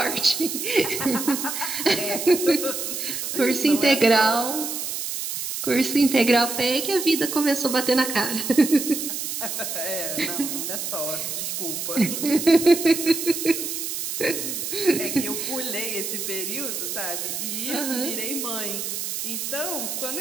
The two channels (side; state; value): right; noise; hiss, 4 dB below the sound